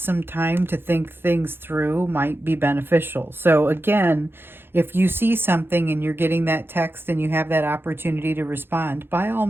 time to think things through might be beneficial. So again, if you see something and you're getting that text and you have that opportunity to respond, by all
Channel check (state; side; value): late; left; 0.10 ms